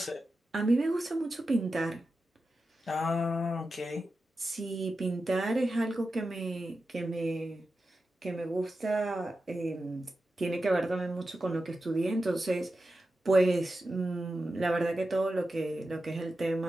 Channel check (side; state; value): both; normal; correlation 0.91